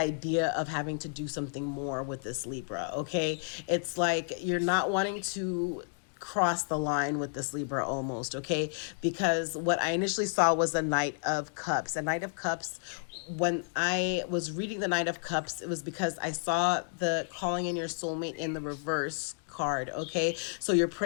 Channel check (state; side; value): silent; right; digital silence